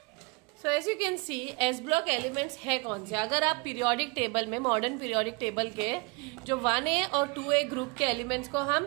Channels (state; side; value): quieter; left; 28.5 dB